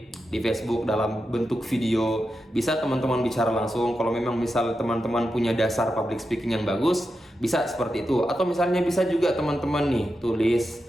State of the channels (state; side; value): normal; both; correlation 0.89